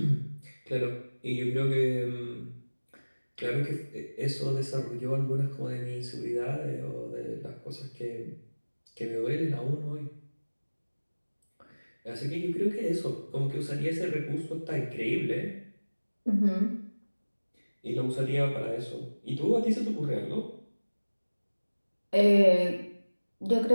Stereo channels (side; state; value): both; inverted; correlation -1.00